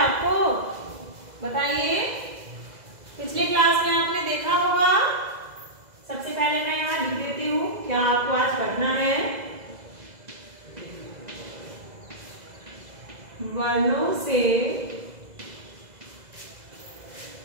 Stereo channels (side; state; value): left; late; 2.0 ms